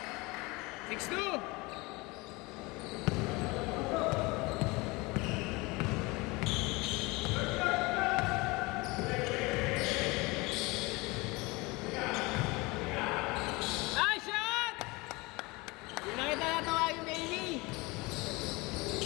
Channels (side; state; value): right; quieter; 24.3 dB